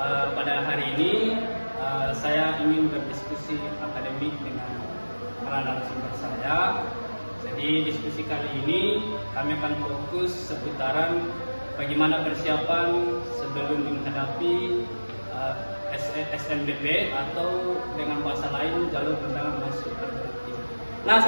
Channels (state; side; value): inverted; both; correlation -1.00